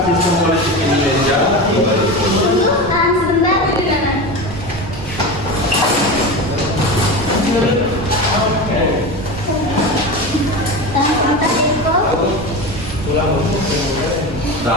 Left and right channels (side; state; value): right; noise; rumble, 13 dB below the sound